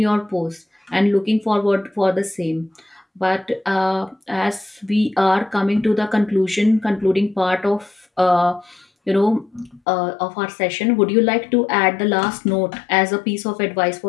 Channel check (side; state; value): right; drops out; at 9.8 s